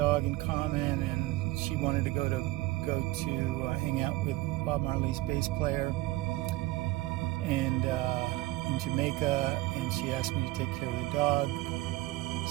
in common, and she wanted to go to hang out with Bob Marley's bass player and in Jamaica, and she asked me to take care of the dog.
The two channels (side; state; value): left; quieter; 18.9 dB